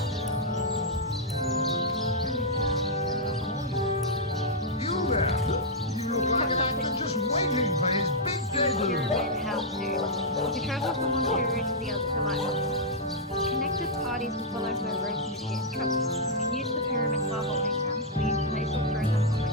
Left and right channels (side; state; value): both; normal; correlation -0.07